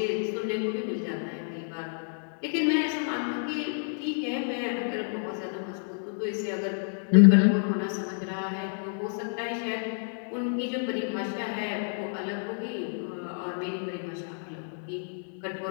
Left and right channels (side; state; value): right; silent; digital silence